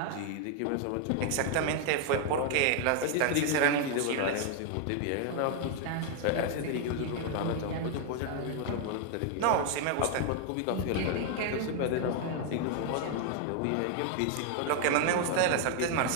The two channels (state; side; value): different; both; correlation 0.00